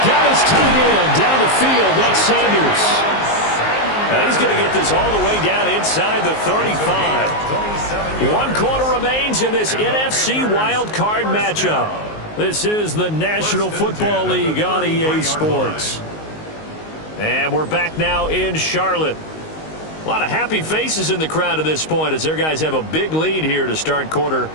got his tight end down the field. That's Sanders. Now he's going to get this all the way down inside the 35. 1 quarter remains in this NFC wild card matchup. This is the National Football League on EA Sports. And we're back now in Charlotte. A lot of happy faces in the crowd at this point as their guys have a big lead here to start quarter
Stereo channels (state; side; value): late; right; 19 ms